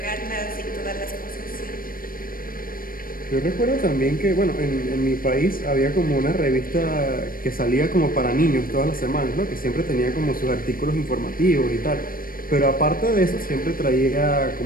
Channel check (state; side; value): late; right; 0.41 ms